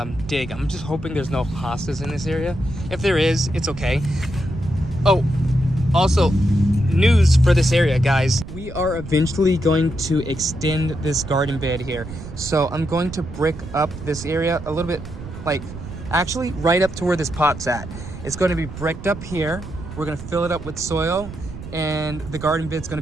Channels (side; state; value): right; noise; rumble, 11 dB below the sound